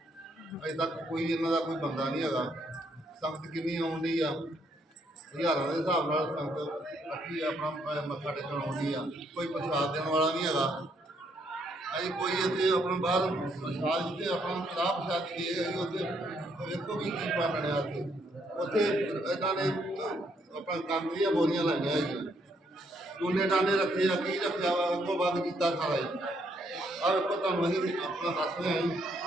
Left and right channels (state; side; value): normal; both; correlation 0.73